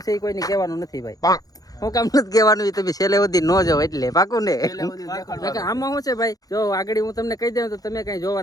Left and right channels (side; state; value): right; late; 0.18 ms